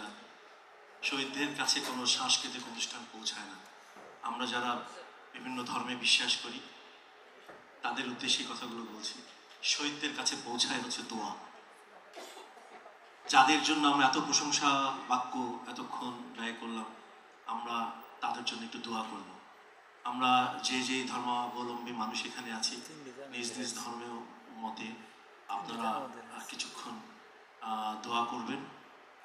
না, শহীদদের কাছে কোনো সাংস্কৃতিক অনুষ্ঠান পৌঁছায় না। আমরা যারা বিভিন্ন ধর্মে বিশ্বাস করি তাদের উদ্দেশ্যে কথাগুলো বলছি। শহীদদের কাছে পৌঁছায় হচ্ছে দোয়া। যাদের জন্য আমরা এত প্রশংসা বাক্য এতক্ষণ ব্যয় করলাম, আমরা তাদের জন্য একটু দোয়া করব। আমরা যে যে ধর্মাবলম্বী মানুষ এখানে আছি, নিজ নিজ ধর্মের মতে আপনারা কিছুক্ষণ দোয়া করবেন।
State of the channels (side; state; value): both; identical; correlation 1.00